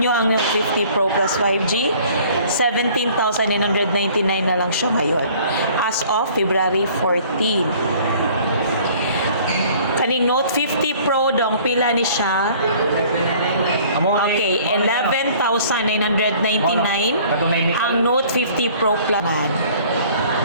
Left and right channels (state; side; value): inverted; both; correlation -0.53